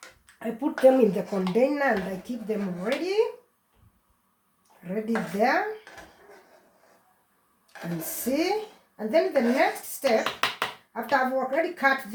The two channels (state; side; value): identical; both; correlation 1.00